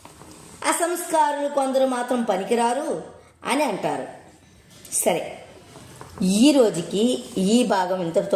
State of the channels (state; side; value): identical; both; correlation 1.00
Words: అసంస్కారులు కొందరు మాత్రం పనికిరారు అని అంటారు. సరే, ఈ రోజుకి ఈ భాగం